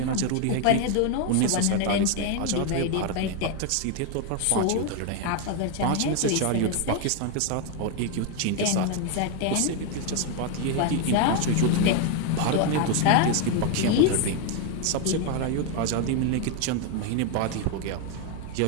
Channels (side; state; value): both; different; correlation 0.01